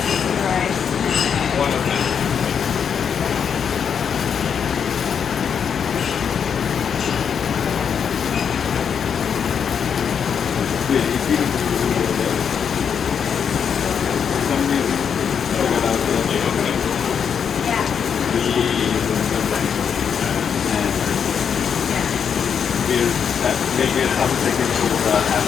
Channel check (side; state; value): right; quieter; 7.3 dB